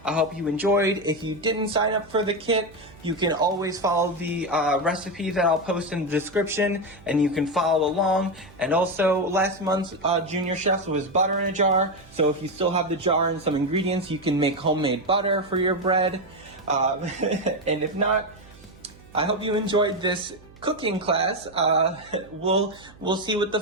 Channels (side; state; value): right; noise; hum, 24 dB below the sound